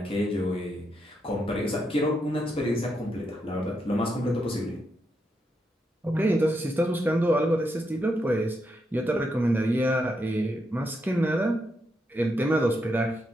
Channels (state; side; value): normal; both; correlation 0.82